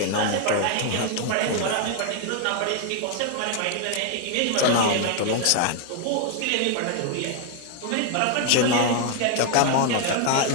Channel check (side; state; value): both; different; correlation 0.00